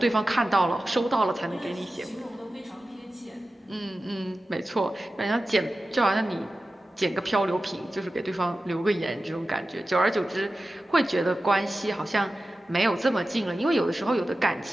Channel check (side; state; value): both; normal; correlation 0.94